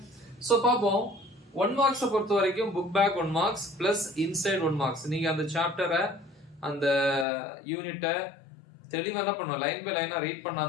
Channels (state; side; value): drops out; right; at 7.2 s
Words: சோ பாப்போம். 1 மார்க்ஸ் பொறுத்த வரைக்கும் book back 1 marks plus inside 1 marks. நீங்க அந்த சாப்டரை அந்த யூனிட்டை தெளிவா என்ன பண்ணுவோம், லைன் பை லைனா ரீட்